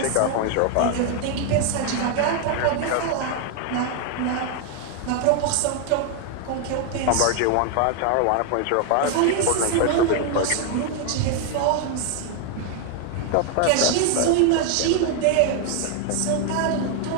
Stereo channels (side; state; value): both; different; correlation 0.01